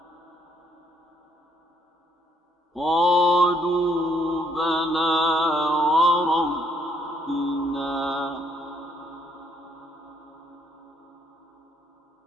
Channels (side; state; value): both; normal; correlation 0.69